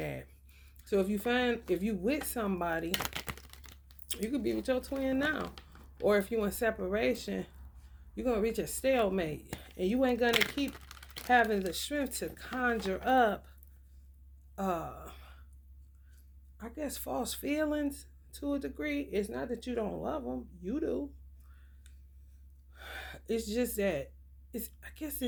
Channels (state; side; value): identical; both; correlation 1.00